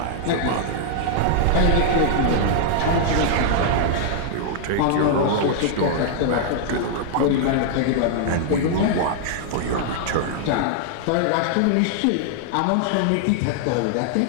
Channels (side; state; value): both; different; correlation -0.01